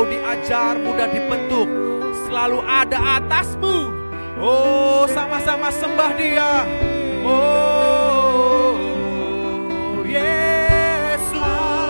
diajar, mudah dibentuk, selalu ada atasmu. Sama-sama sembah Dia. Yesus,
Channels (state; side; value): inverted; both; correlation -1.00